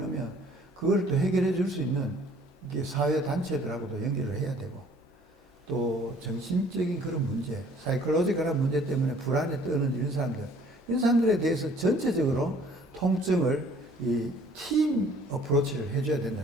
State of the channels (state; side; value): normal; both; correlation 0.56